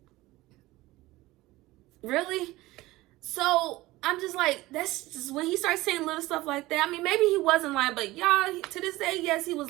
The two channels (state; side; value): quieter; left; 18.7 dB